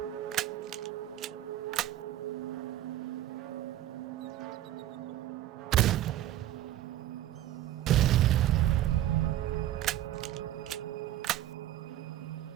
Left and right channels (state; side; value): quieter; left; 13.3 dB